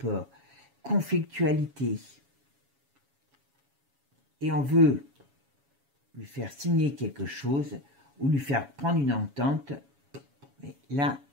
conflictualité. Et on veut lui faire signer quelque chose ou lui faire prendre une entente. Mais là,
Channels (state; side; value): late; left; 7.2 ms